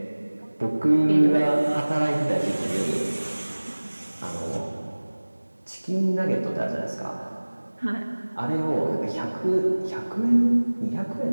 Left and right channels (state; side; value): inverted; both; correlation -1.00